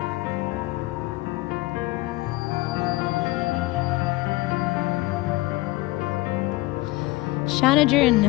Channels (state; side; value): quieter; right; 20.4 dB